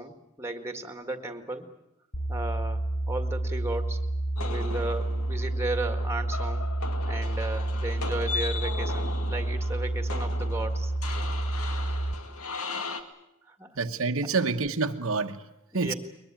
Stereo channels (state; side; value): normal; both; correlation 0.64